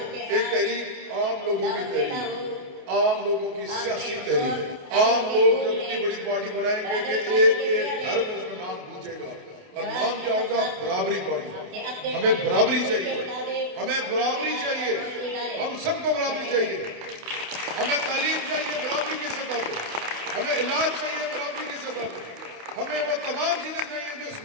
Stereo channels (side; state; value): left; late; 28 ms